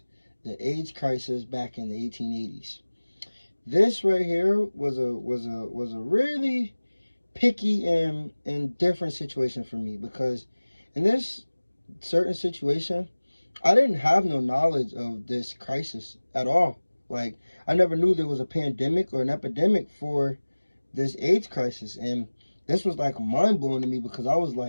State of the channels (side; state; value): both; inverted; correlation -1.00